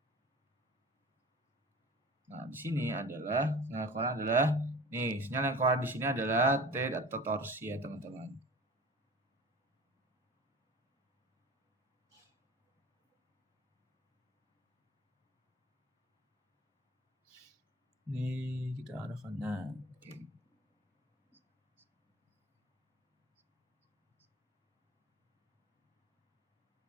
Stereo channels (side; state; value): both; normal; correlation 0.39